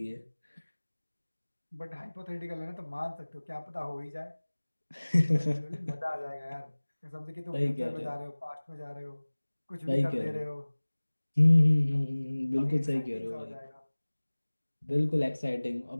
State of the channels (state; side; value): inverted; both; correlation -1.00